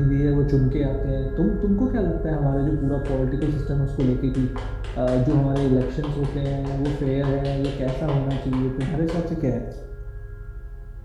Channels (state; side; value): identical; both; correlation 1.00